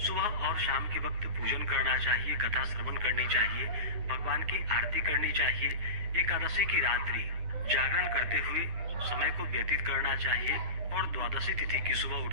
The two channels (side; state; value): left; late; 9.9 ms